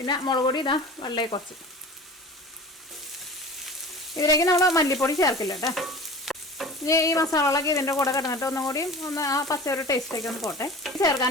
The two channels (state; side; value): normal; both; correlation 0.38